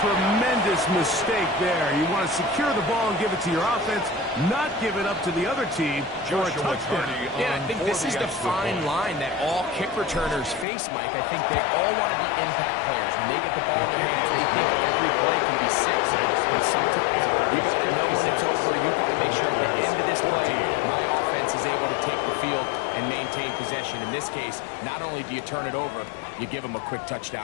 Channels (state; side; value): drops out; right; at 10.7 s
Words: tremendous mistake there. You want to secure the ball and give it to your offense, not give it up to the other team for a touchdown. Yeah, I think this is the fine line that all kick returners face, Mike. I think they all want to be impact players. When they get the ball in their hands, they think every play can be 6. But sometimes you got to know when it's over. You've got to make sure at the end of this play, my offense is able to take the field and maintain possession. In this case, not only do you turn it over, you give them a quick